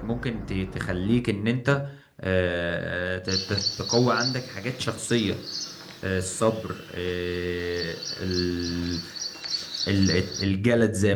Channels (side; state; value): both; identical; correlation 1.00